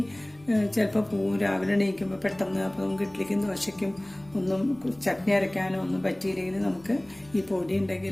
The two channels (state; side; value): noise; left; rumble, 27 dB below the sound